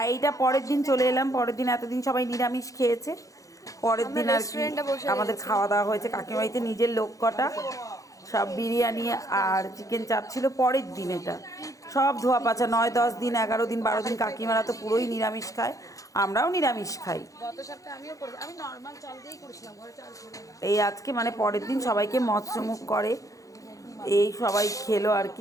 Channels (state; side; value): late; right; 0.16 ms